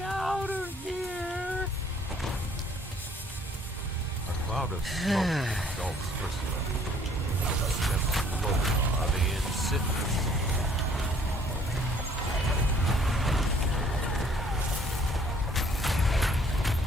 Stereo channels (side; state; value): both; normal; correlation 0.59